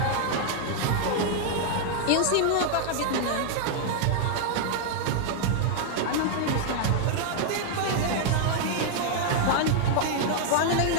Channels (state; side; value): different; both; correlation 0.00